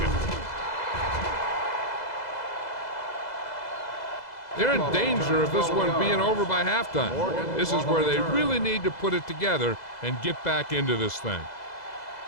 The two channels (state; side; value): late; right; 2.0 ms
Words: They're in danger of this one being over by halftime. This is where they really need to put it together and get back into this thing.